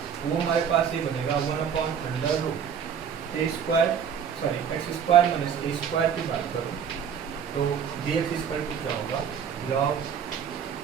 वो हमारे पास ये बनेगा 1/√a square sorry x square minus a square की बात करूँ तो डी एक्स इक्वल टू क्या होगा, log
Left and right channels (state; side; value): quieter; left; 7.7 dB